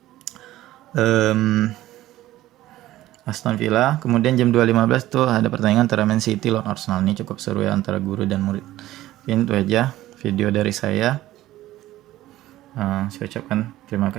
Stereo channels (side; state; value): left; quieter; 15.2 dB